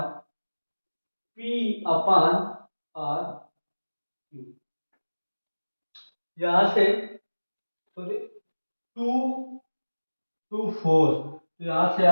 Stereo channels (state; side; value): inverted; both; correlation -1.00